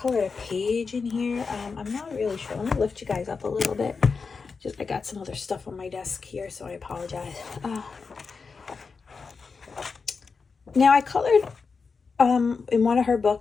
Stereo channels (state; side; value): quieter; right; 4.9 dB